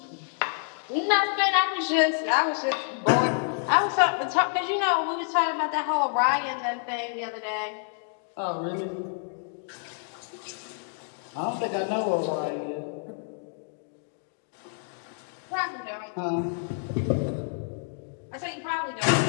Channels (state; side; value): silent; right; 59 dB below the other